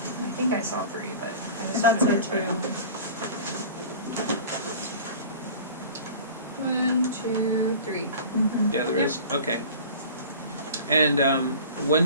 think I saw 3, but I was That's gonna it try. too. 1, 2, 3. Mm-hmm. Yeah, there is. Okay. And when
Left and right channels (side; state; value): both; inverted; correlation -0.40